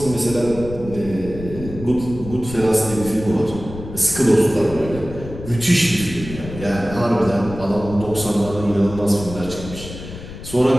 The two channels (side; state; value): left; noise; rumble, 12 dB below the sound